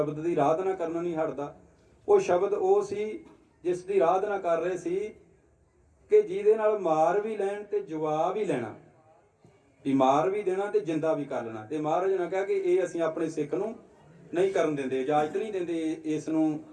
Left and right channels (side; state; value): both; identical; correlation 1.00